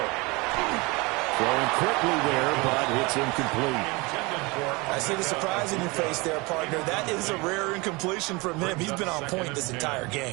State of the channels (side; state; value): left; quieter; 25.6 dB